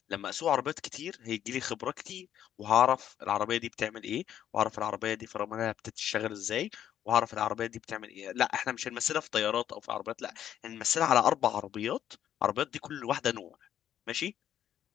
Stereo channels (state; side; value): quieter; right; 10.5 dB